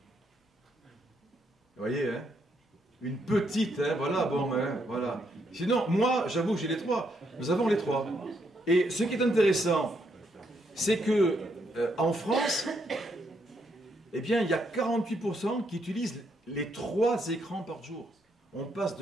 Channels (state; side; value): normal; both; correlation 0.76